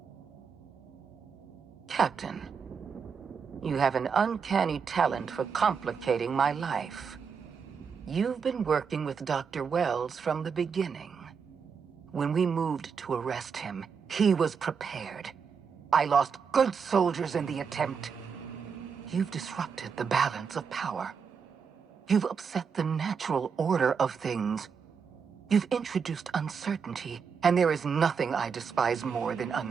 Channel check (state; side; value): quieter; left; 6.2 dB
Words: Captain, you have an uncanny talent for complicating my life. You've been working with Dr. Wells from the beginning. When we moved to arrest him, he was prepared. I lost good soldiers in the attempt. You've disrupted the balance of power. You've upset the natural order of things. You've introduced uncertainty, and there is nothing I despise more than